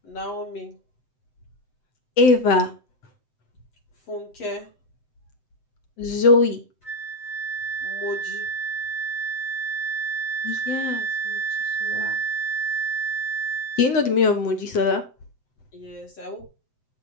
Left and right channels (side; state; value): right; late; 7.8 ms